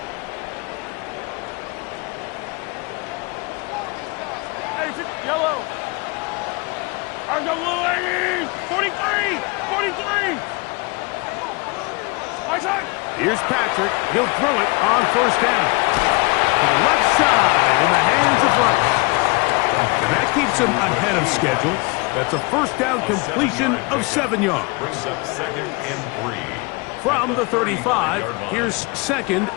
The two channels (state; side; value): quieter; right; 27.7 dB